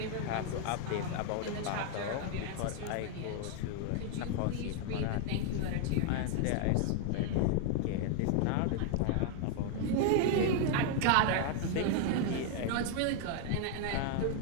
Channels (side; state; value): both; different; correlation 0.00